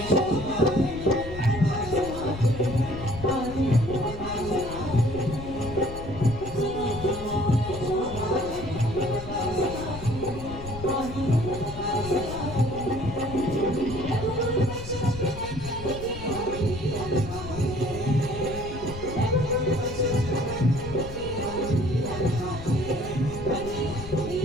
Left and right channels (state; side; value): noise; left; rumble, 11 dB below the sound